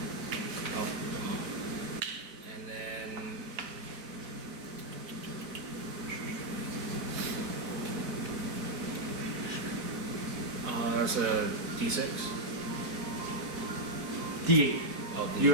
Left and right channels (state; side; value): late; left; 4.1 ms